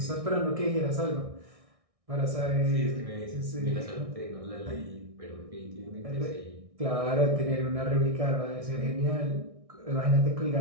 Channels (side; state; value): left; late; 1.6 ms